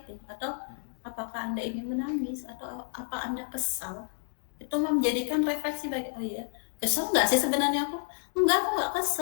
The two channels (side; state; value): right; silent; digital silence